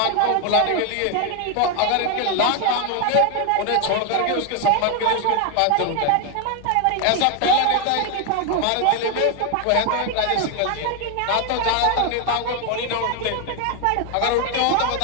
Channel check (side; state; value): both; different; correlation 0.01